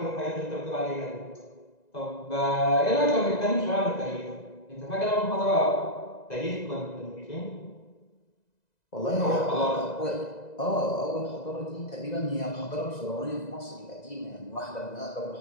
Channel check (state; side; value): late; right; 2.0 ms